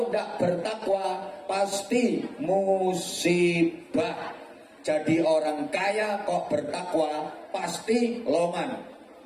tidak bertakwa pasti musibah. Jadi orang kaya kok bertakwa pasti loman.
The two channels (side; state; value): both; identical; correlation 1.00